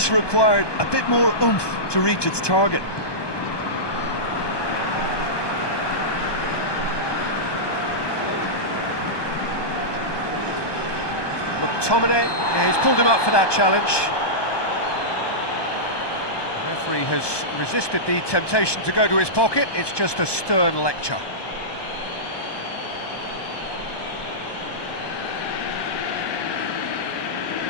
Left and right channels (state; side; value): late; right; 1.2 ms